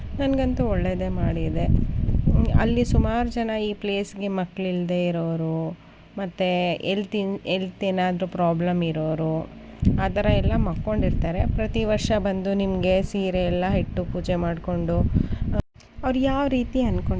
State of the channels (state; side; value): identical; both; correlation 1.00